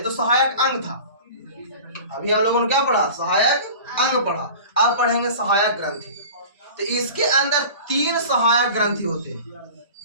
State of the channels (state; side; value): inverted; both; correlation -0.39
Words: तो सहायक अंग था, अभी हम लोगों ने क्या पढ़ा? सहायक अंग पढ़ा। अब पढ़ेंगे सहायक ग्रंथि। तो इसके अंदर 3 सहायक ग्रंथि होते हैं।